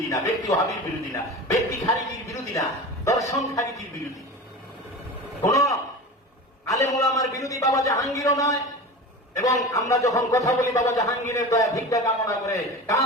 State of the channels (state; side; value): normal; both; correlation 0.31